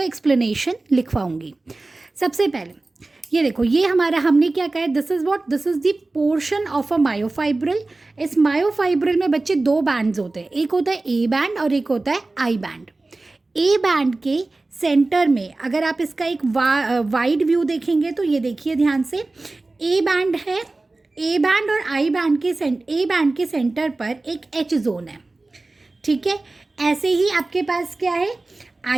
एक्सप्लेनेशन लिखवाऊंगी। सबसे पहले ये देखो, ये हमारा हमने क्या कहा है, this is the portion of a myofibril. इस मायोफाइब्रिल में बच्चे दो बैंड्स होते हैं, एक होता है ए बैंड और एक होता है आई बैंड। ए बैंड के सेंटर में अगर आप इसका एक वाइड व्यू देखेंगे तो ये देखिए ध्यान से, ए बैंड है, ए बैंड और आई बैंड के ए बैंड के सेंटर पर एक एच जोन है, ठीक है। ऐसे ही आपके पास क्या है,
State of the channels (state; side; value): quieter; left; 3.2 dB